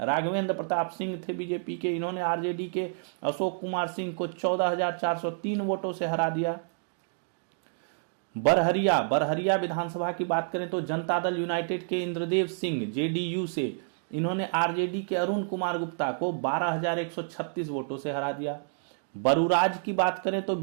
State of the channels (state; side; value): silent; left; digital silence